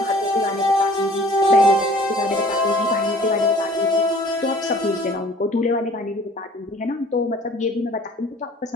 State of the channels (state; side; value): normal; both; correlation 0.51